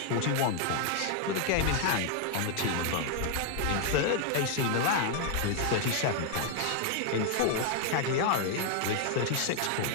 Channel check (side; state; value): both; different; correlation 0.00